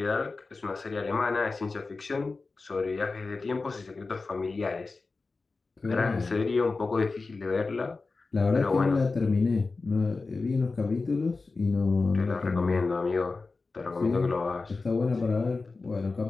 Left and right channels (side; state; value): right; quieter; 3.9 dB